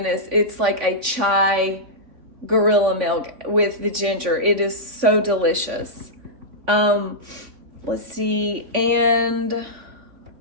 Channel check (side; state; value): left; late; 3.5 ms